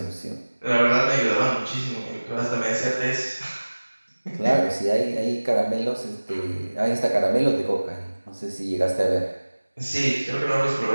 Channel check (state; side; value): inverted; both; correlation -1.00